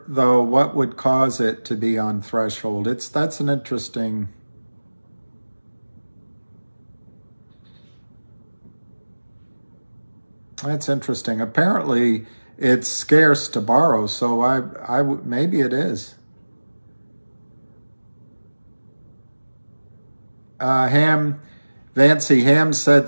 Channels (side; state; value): both; inverted; correlation -1.00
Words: though, what would cause it to be on threshold. That's an interesting... That's interesting. Apparently, it's scarce to borrow, so maybe it is. Vancy Ham said